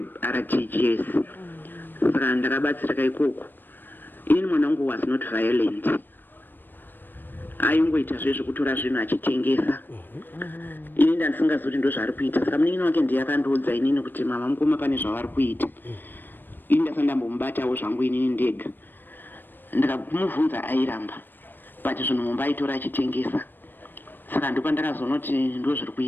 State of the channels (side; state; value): right; late; 0.093 ms